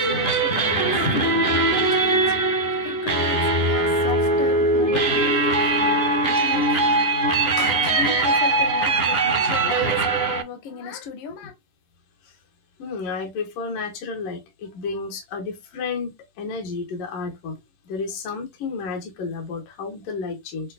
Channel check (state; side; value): late; right; 10 ms